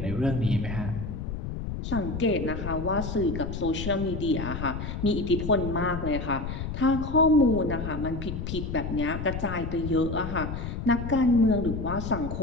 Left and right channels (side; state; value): left; noise; rumble, 5 dB below the sound